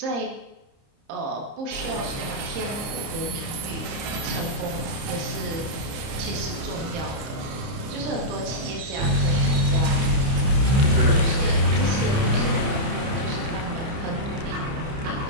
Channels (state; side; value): late; left; 30 ms